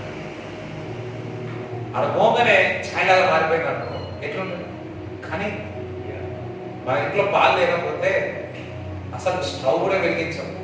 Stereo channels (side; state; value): both; identical; correlation 1.00